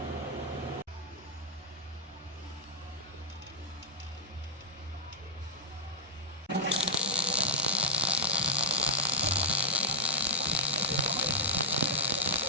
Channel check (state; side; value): normal; both; correlation -0.04